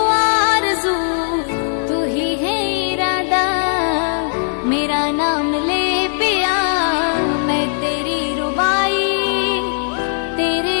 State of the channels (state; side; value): silent; right; 67 dB below the other